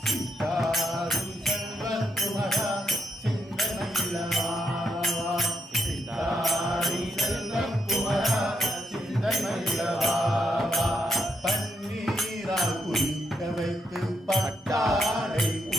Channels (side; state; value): both; normal; correlation 0.79